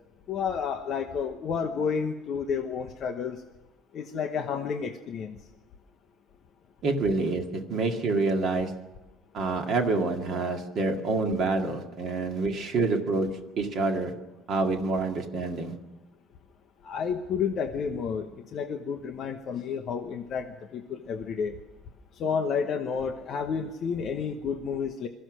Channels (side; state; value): both; normal; correlation 0.54